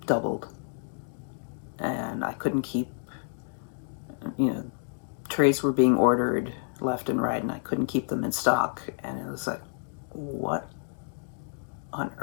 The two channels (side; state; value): right; silent; digital silence